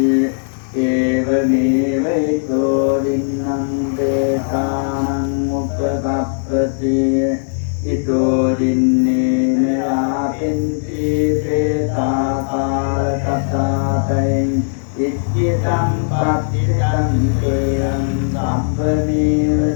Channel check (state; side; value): silent; right; digital silence